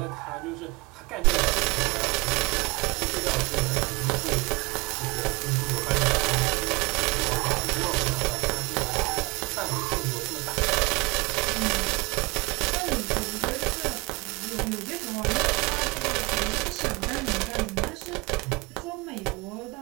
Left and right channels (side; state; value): left; quieter; 25.3 dB